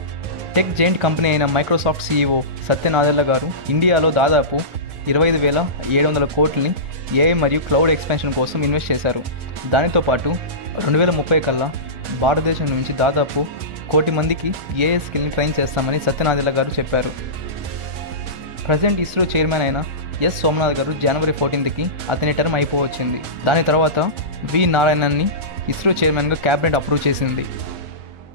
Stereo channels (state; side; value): late; left; 1.4 ms